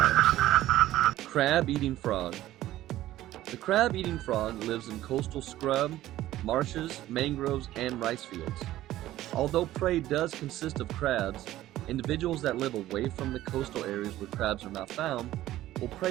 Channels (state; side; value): quieter; left; 14.6 dB